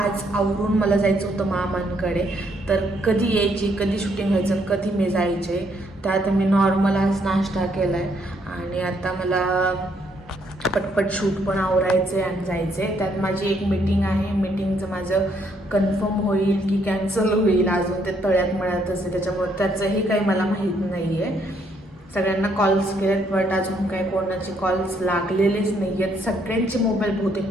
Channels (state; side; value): normal; both; correlation 0.71